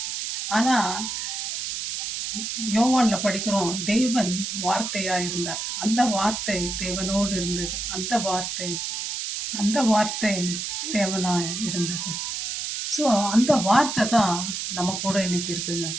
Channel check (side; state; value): right; noise; hiss, 4 dB below the sound